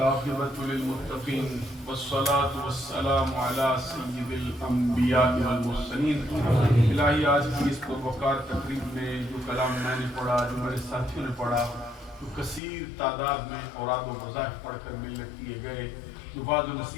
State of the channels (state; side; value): drops out; right; at 12.6 s